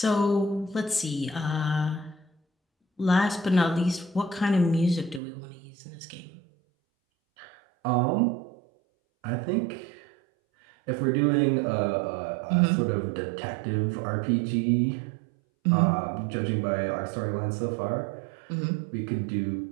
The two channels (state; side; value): drops out; left; at 5.2 s